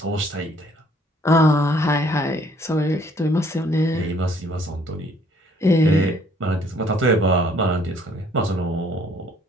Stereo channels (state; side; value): normal; both; correlation 0.61